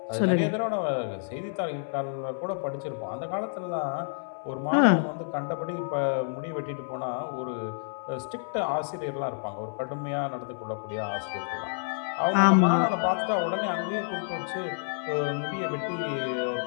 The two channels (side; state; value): right; silent; 59 dB below the other